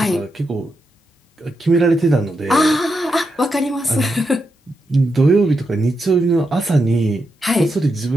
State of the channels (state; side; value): normal; both; correlation 0.85